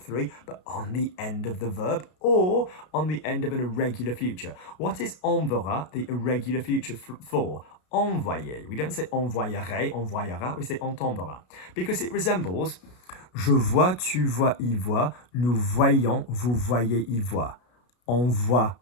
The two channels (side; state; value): right; late; 33 ms